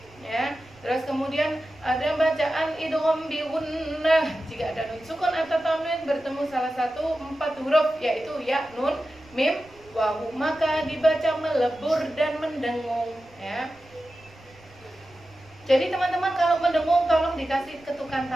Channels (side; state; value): right; noise; rumble, 26 dB below the sound